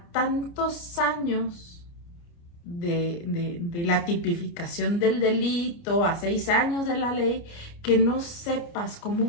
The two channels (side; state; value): right; late; 29 ms